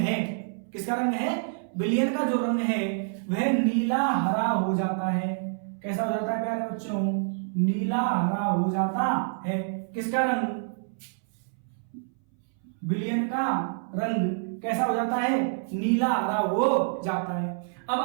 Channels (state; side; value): silent; left; 60 dB below the other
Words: किसका रंग है, विलयन का जो रंग है वह नीला हरा हो जाता है। कैसा हो जाता है प्यारे बच्चों, नीला हरा हो जाता है। किसका रंग, विलयन का रंग कैसा हो जाता है, नीला हरा हो जाता है। अब